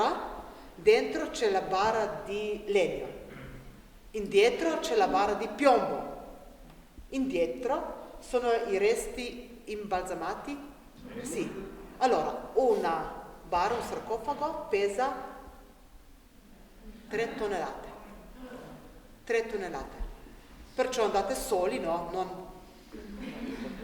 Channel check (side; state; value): both; identical; correlation 1.00